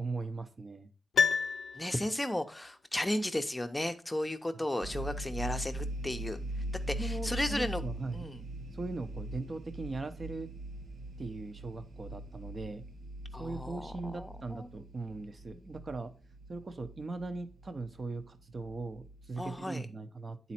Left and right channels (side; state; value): both; normal; correlation 0.86